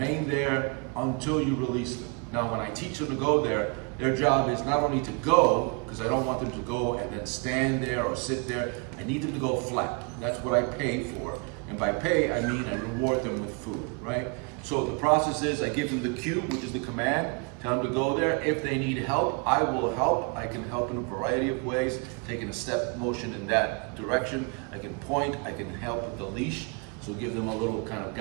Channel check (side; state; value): left; quieter; 34.1 dB